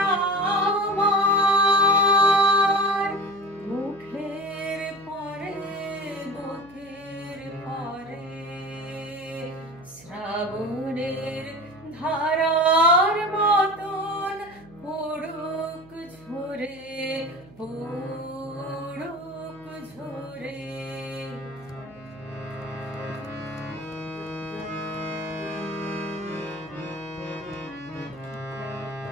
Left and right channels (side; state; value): right; noise; hum, 22 dB below the sound